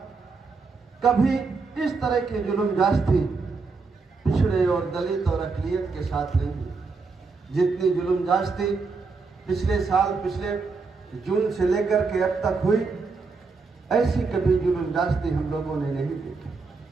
कभी इस तरह के जुल्म जास्ती पिछड़े और दलित और अक़लियत के साथ नहीं हुई। जितनी जुल्म जास्ती पिछले साल, पिछले जून से लेकर के अब तक हुई, ऐसी कभी जुल्म जास्ती हम लोगों ने नहीं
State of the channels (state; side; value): quieter; left; 4.4 dB